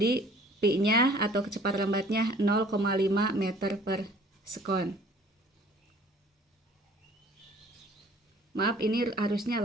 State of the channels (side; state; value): both; normal; correlation 0.53